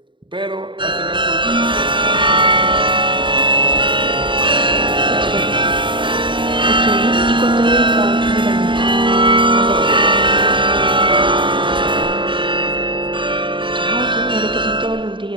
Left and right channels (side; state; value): left; late; 0.24 ms